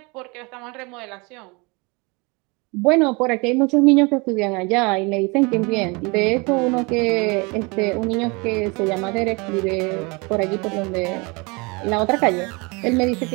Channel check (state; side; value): quieter; left; 28.2 dB